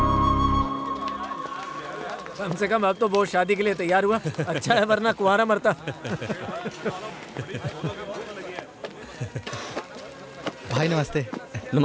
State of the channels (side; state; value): both; identical; correlation 1.00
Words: कम से कम अब तो वो शादी के लिए तैयार हुआ। अच्छा है, वरना कुंवारा मरता। भाई नमस्ते।